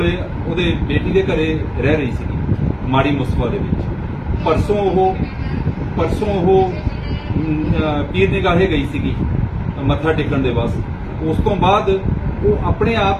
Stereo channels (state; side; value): identical; both; correlation 1.00